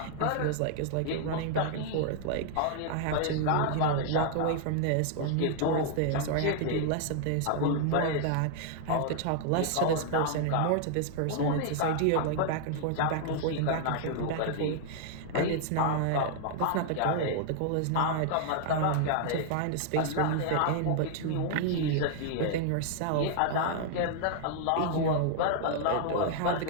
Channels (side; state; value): both; different; correlation 0.00